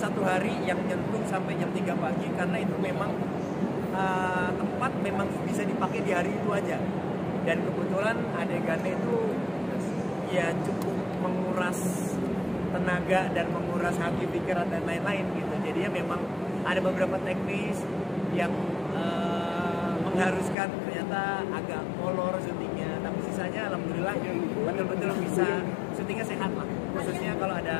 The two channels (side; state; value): right; drops out; at 20.6 s